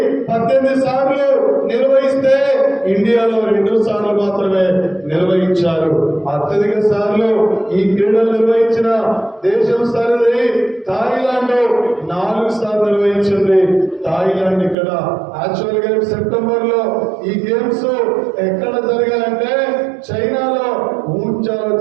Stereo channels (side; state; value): left; drops out; at 14.8 s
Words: 18 సార్లు నిర్వహిస్తే ఇండియాలో 2 సార్లు మాత్రమే నిర్వహించారు. అత్యధిక సార్లు ఈ క్రీడలు నిర్వహించిన దేశం సరిది థాయిలాండ్ 4 సార్లు నిర్వహించింది. థాయిలాండ్ ఇక్కడ యాక్చువల్ గా సెప్టెంబర్ లో ఈ గేమ్స్ ఎక్కడ జరగాలంటే చైనాలో ఊంచాలో